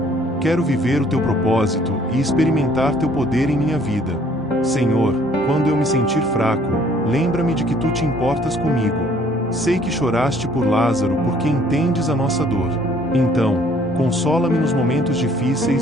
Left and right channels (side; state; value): both; normal; correlation 0.60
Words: Quero viver o Teu propósito e experimentar Teu poder em minha vida. Senhor, quando eu me sentir fraco, lembra-me de que Tu te importas comigo. Sei que choraste por Lázaro porque entendes a nossa dor. Então, consola-me nos momentos